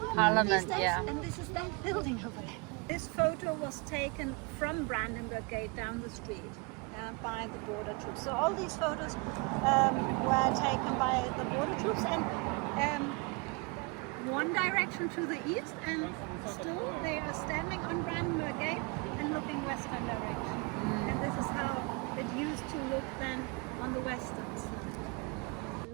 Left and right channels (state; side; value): quieter; left; 29.5 dB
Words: these days, and this is that building over there. This photo was taken from Brandenburg Gate down the street by the border troops. So all these photos were taken by the border troops, and one direction to the east, and still they are standing on Brandenburg Gate and looking western direction. And this is how it used to look then on the western side.